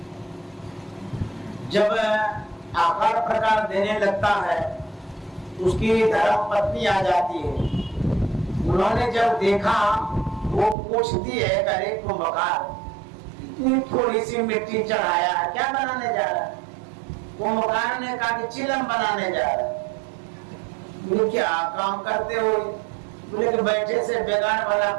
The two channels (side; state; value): left; drops out; at 10.8 s